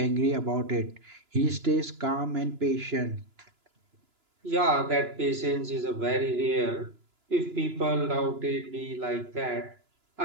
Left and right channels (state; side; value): late; left; 2.9 ms